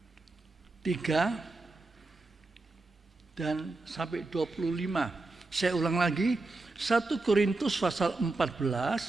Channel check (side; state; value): left; quieter; 3.2 dB